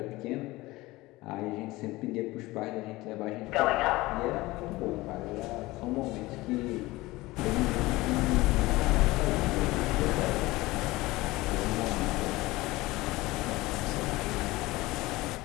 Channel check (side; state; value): right; quieter; 19.9 dB